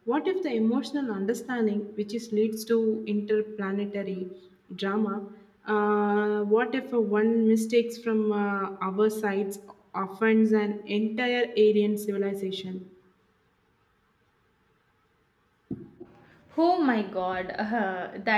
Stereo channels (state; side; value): identical; both; correlation 1.00